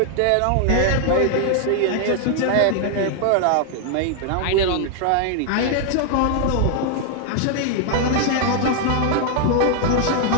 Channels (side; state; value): both; different; correlation 0.00